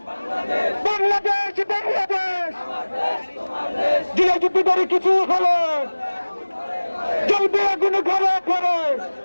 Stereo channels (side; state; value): both; inverted; correlation -1.00